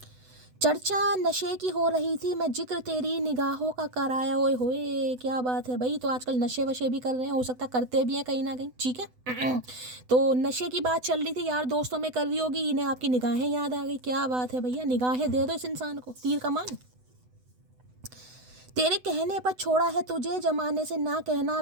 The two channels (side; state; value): left; late; 8.0 ms